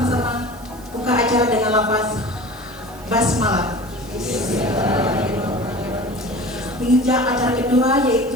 buka acara dengan lafaz basmalah. Menginjak acara kedua,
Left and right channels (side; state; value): right; noise; hiss, 23 dB below the sound